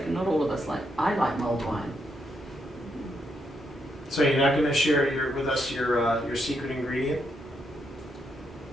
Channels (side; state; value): both; normal; correlation 0.79